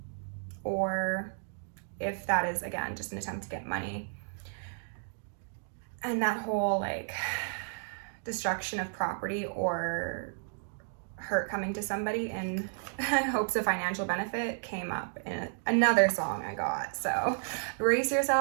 or if that is, again, just an attempt to get money. And that whole like destruction of property or hurt coming to somebody in hopes of financial benefit came up in another song I got. So brace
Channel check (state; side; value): silent; left; digital silence